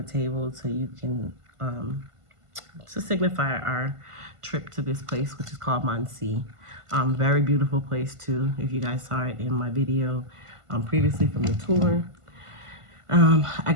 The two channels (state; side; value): late; left; 1.5 ms